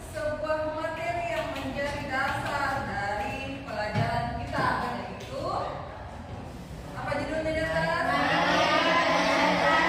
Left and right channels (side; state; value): both; identical; correlation 1.00